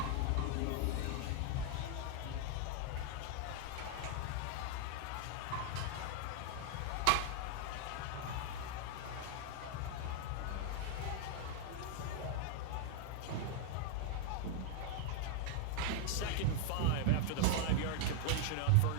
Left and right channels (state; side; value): different; both; correlation 0.00